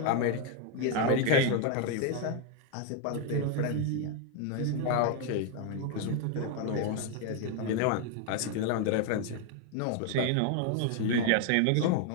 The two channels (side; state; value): both; different; correlation 0.01